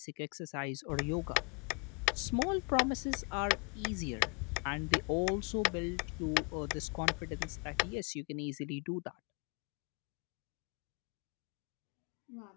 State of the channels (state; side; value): quieter; right; 32.8 dB